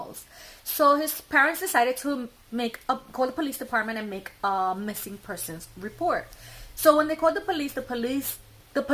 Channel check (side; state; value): both; identical; correlation 1.00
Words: So his parents decided to call the police department and make a missing persons report. So when they called the